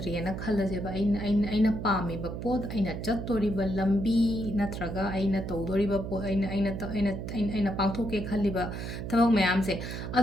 ꯈꯜꯂꯁꯦꯕ ꯑꯩꯅ ꯄꯥꯝꯃꯤꯕ ꯄꯣꯠ ꯑꯩꯅ ꯆꯠꯇꯣꯔꯤꯕ ꯂꯝꯕꯤ ꯅꯠꯇ꯭ꯔꯒ ꯑꯩꯅ ꯇꯧꯗꯣꯔꯤꯕ ꯄꯣꯠ ꯑꯩꯅ ꯄꯥꯡꯊꯣꯛꯀꯦ ꯈꯜꯂꯤꯕ ꯊꯕꯛ ꯃꯌꯥꯝꯁꯦ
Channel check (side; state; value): right; noise; hum, 6 dB below the sound